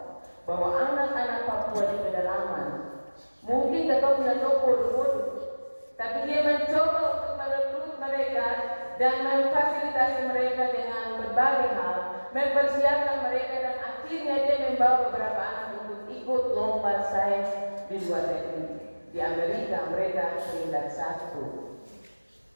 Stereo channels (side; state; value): both; inverted; correlation -1.00